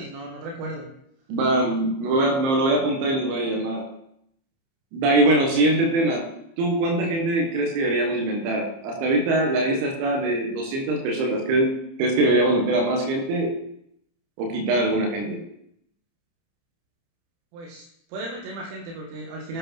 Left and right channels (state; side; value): late; left; 30 ms